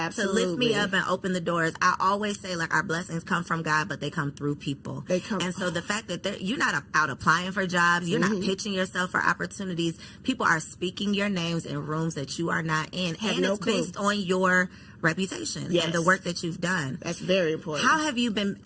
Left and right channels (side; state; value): both; identical; correlation 1.00